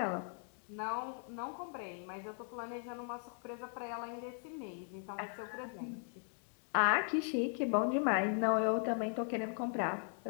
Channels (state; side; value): silent; right; 52 dB below the other